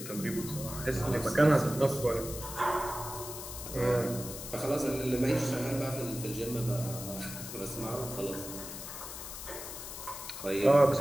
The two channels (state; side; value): noise; left; hiss, 9 dB below the sound